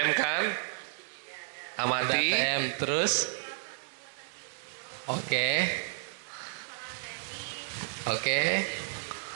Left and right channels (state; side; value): silent; left; digital silence